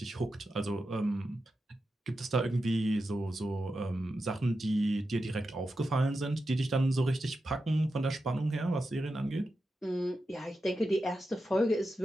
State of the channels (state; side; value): normal; both; correlation 0.89